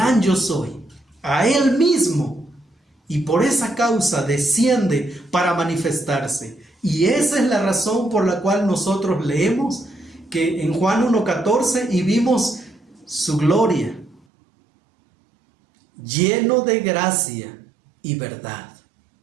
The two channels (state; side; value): drops out; left; at 14.2 s